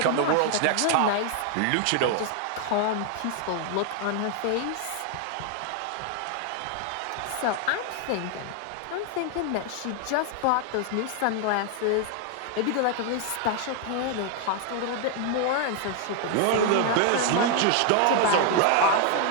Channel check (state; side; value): different; both; correlation 0.00